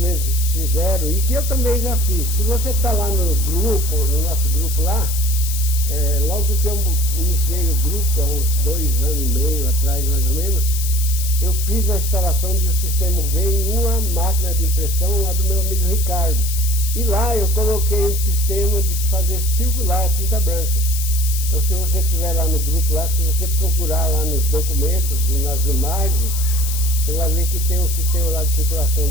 fizeram, e que eu também já fiz, se você está lá no grupo, no nosso grupo lá, logo que eu iniciei o grupo, há uns 2 anos e meio atrás mais ou menos, eu fiz a instalação de um sistema V em uma máquina de impressão lá do meu amigo Ricardo. E lá eu coloquei um sistema de fazer circular a tinta branca. Então se você estiver lá no grupo, lá, se você procurar lá nos documentos e nas imagens, você vai ver que tem um sistema lá de circulação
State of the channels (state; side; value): noise; left; hiss, 6 dB below the sound